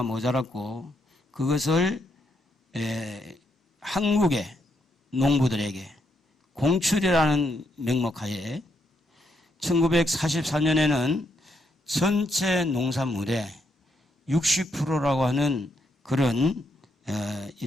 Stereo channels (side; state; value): both; normal; correlation 0.77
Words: 모자랐고, 그것을 한국의 농부들에게 공출이라는 명목하에 1944년에는 전체 농산물의 60%라고 하는 그런